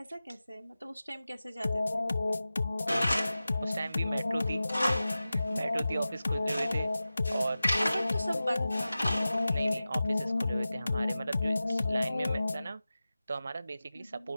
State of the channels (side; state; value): both; inverted; correlation -0.95